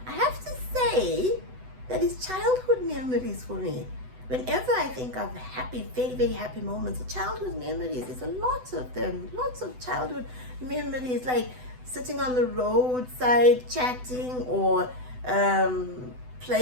have to say that is childhood memories for me. Whenever I think of happy, very, very happy moments, childhood memories, there's a lot of them, lots of childhood memories, like sitting on the roadside chatting, or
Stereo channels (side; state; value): left; late; 8.0 ms